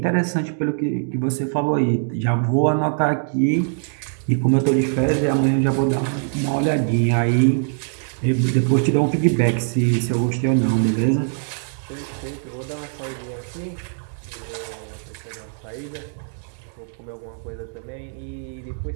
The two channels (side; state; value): left; silent; digital silence